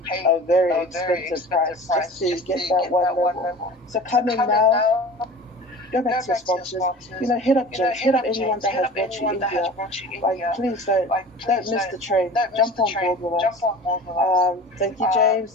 a very expensive price just to get that one level. So come in now. Go back to your sponsors. Hit up James. Hit up anyone that has brought you in here. Please don't miss the train. Jump on board with us. Thank you, James.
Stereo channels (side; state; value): both; normal; correlation 0.39